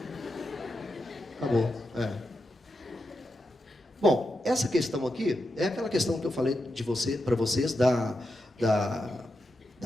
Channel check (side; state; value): both; normal; correlation 0.87